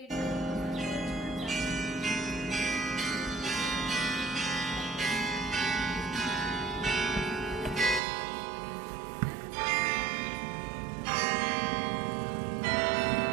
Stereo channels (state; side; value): drops out; left; at 8.0 s